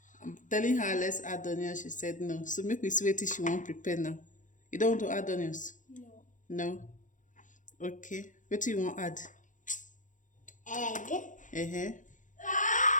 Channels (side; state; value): right; late; 0.37 ms